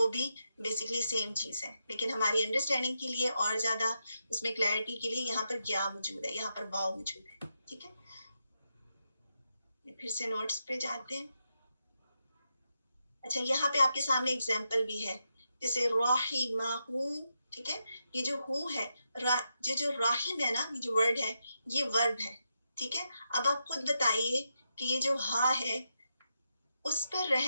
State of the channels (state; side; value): inverted; both; correlation -0.84